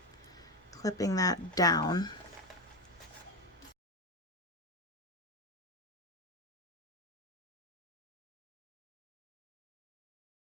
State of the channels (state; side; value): normal; both; correlation 0.14